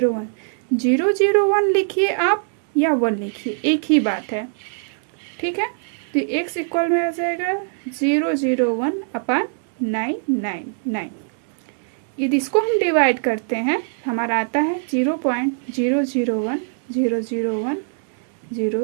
लिखिए आप या 1 लिखिए, एक ही बात है, ठीक है। तो x इक्वल में आ जाएगा 001/999। यदि इसको हम डिवाइड करते हैं हमारा आता है 0.001001001,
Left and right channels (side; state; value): left; silent; digital silence